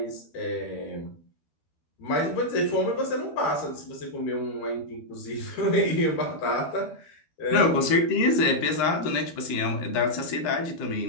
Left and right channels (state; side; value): late; right; 12 ms